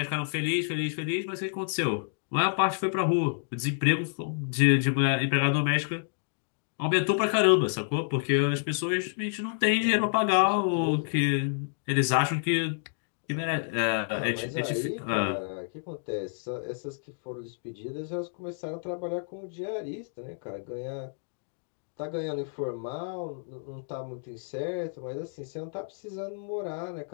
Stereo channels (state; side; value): silent; right; digital silence